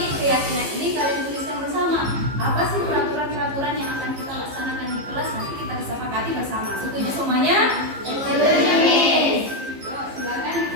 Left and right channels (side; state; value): left; late; 15 ms